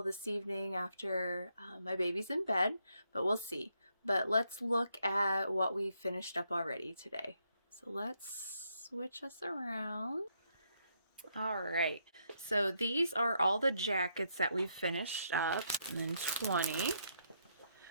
this evening after my baby's in bed, but we'll see. But let's look at what we finished up already today. So let's switch us around. All right, so these are all the jackets that we've finished up, and then 20.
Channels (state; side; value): inverted; both; correlation -0.76